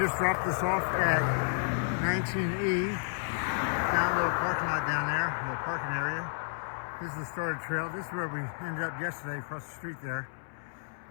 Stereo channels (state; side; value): silent; right; 56 dB below the other